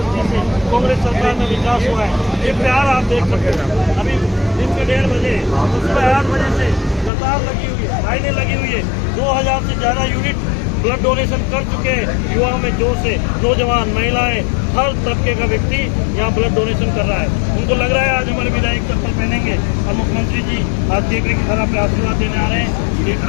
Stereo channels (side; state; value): right; drops out; at 7.1 s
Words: से कांग्रेस सरकार में विकास हुआ है। ये प्यार आप देख सकते हैं। अभी दिन के 1:30 बजे सुबह 8 बजे से कतार लगी हुई है, लाइनें लगी हुई है। 2000 से ज़्यादा यूनिट ब्लड डोनेशन कर चुके हैं। युवाओं में जोश है, नौजवान, महिलाएं, हर तबके का व्यक्ति यहाँ ब्लड डोनेशन कर रहा है। उनको लग रहा है आज हमारे विधायक चप्पल पहनेंगे और मुख्यमंत्री जी आज केकड़ी की तरह पे आशीर्वाद देने आ रहे हैं।